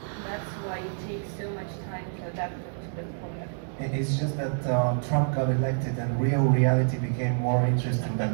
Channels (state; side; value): silent; left; digital silence